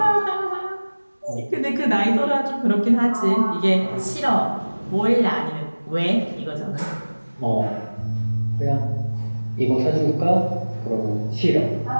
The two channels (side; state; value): both; inverted; correlation -1.00